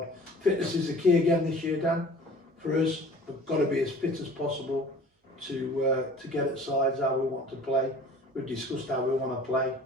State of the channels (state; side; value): normal; both; correlation 0.46